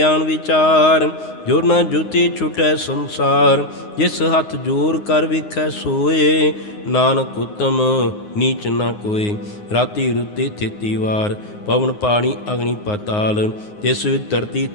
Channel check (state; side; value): late; right; 9.6 ms